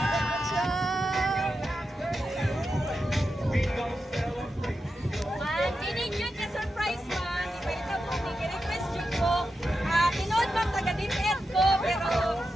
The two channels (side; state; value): both; normal; correlation 0.89